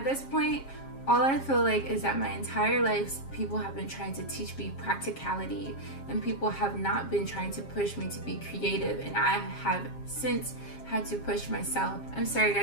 this point, all I feel like is that my entire life, people have been trying to teach me practicality, and people have not been trying to push me to be creative, and I have since had to push myself. I'm sorry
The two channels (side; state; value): right; late; 7.4 ms